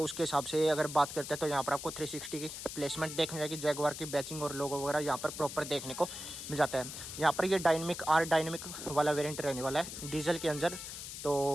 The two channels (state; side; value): noise; left; hiss, 9 dB below the sound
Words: उसके हिसाब से अगर बात करते हैं तो यहाँ पर आपको 360 की प्लेसमेंट देखने जाएगी। जैगवार की बैचिंग और लोगो वगैरह यहाँ पर प्रॉपर देखने को मिल जाता है। यहाँ पर ये डायनेमिक वाला वेरियंट रहने वाला है डीजल के अंदर, तो